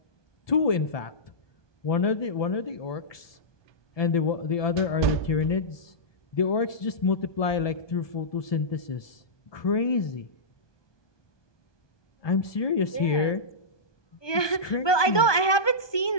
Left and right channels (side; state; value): right; late; 1.2 ms